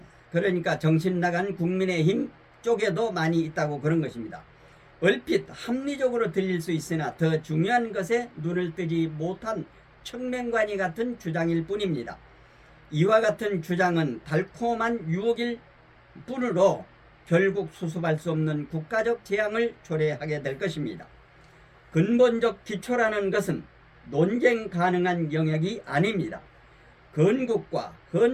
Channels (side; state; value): both; identical; correlation 1.00